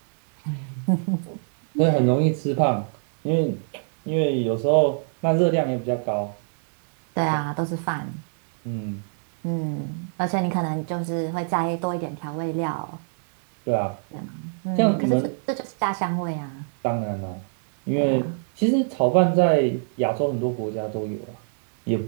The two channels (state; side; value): silent; left; digital silence